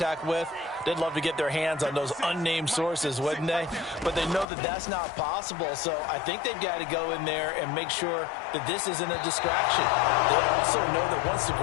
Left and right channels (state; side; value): drops out; right; at 4.5 s